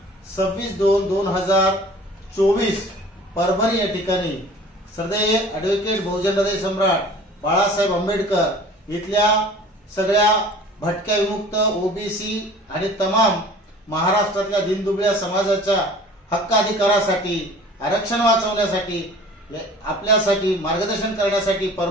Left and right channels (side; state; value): both; normal; correlation 0.46